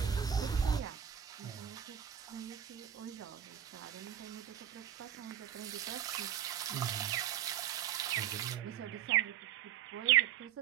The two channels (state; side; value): quieter; left; 9.9 dB